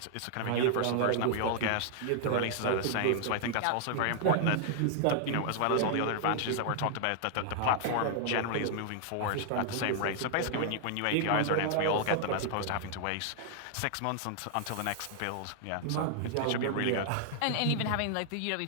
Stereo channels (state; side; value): different; both; correlation 0.00